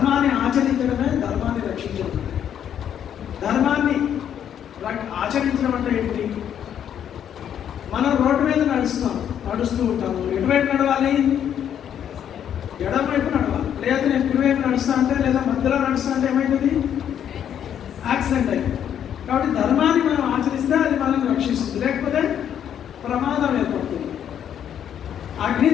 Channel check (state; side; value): quieter; right; 9.4 dB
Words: ఆచరించడమే ధర్మాన్ని రక్షించడం. ధర్మాన్ని ఆచరించడం అంటే ఏంటి? మనం రోడ్డు మీద నడుస్తూ ఉంటాము. ఎటువైపు నడవాలి? ఎడమ వైపు నడవాలి. లేదా నేను కుడివైపు నడుస్తా అంటే లేదా మధ్యలో నడుస్తా అంటే ఏమైతుంది? యాక్సిడెంట్ అయింది. కాబట్టి ధర్మాన్ని మనం ఆచరిస్తే అది మనం రక్షిస్తుంది, లేకపోతే ప్రమాదం ఏర్పడుతుంది. అగ్ని